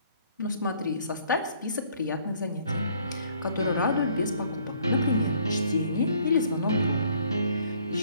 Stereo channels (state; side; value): inverted; both; correlation -0.61